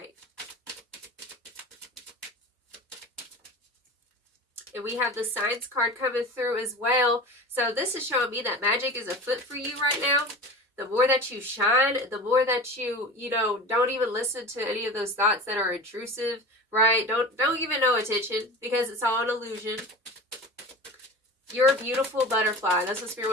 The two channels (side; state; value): both; normal; correlation 0.33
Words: And we have the Signs card coming through as well. So this is showing me that magic is afoot for you right now. The more that you shine, the more that you don't even listen to any of those thoughts that are intrusive, right? Don't give it no attention, because it's all an illusion. You're a beautiful butterfly. That's what Spirit